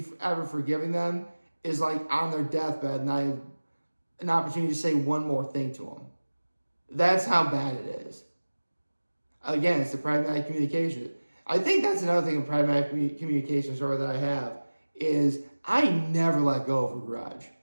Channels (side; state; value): both; inverted; correlation -1.00